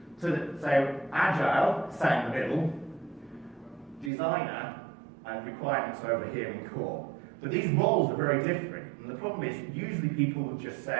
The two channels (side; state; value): left; drops out; at 4.1 s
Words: So agile, sat in the middle, designer, and requirements over here in core. But these roles are very different, and the problem is usually people would just